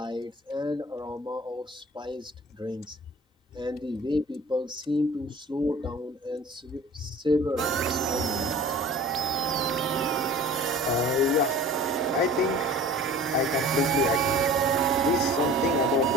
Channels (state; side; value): normal; both; correlation 0.43